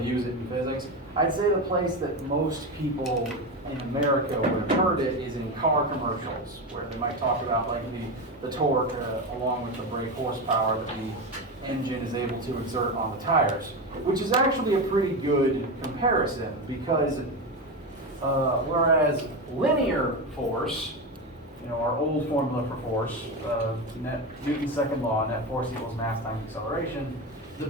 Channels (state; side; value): normal; both; correlation 0.17